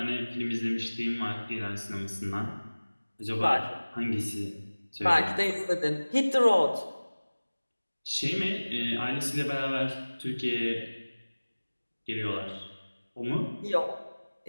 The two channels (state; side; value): inverted; both; correlation -1.00